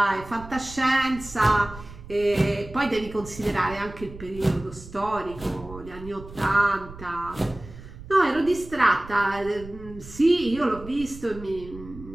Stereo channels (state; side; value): noise; right; rumble, 16 dB below the sound